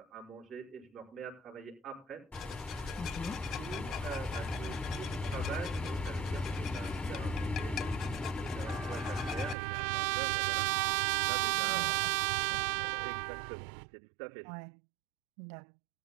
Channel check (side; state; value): left; drops out; at 9.6 s